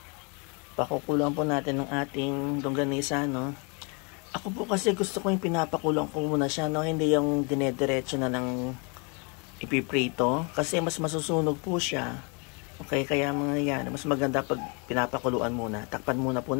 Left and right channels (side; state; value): right; quieter; 33.4 dB